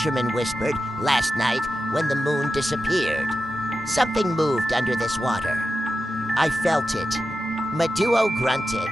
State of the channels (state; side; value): normal; both; correlation 0.91